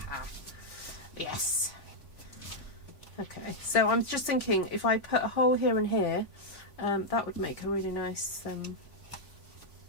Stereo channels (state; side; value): late; right; 3.5 ms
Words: Yes. Okay, so I'm just thinking if I put a hole here and here, that would make a really nice,